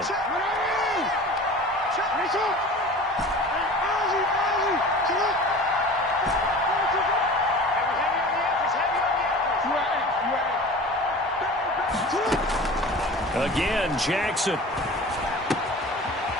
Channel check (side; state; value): both; normal; correlation 0.39